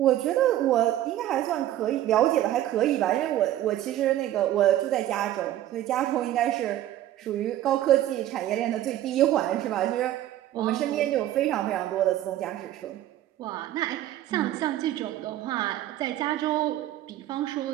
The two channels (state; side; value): quieter; left; 13.1 dB